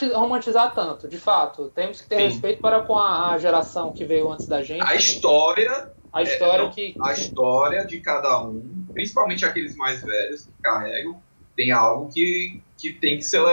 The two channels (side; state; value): both; inverted; correlation -1.00